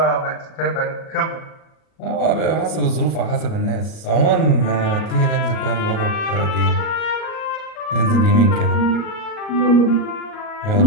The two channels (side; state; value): right; late; 38 ms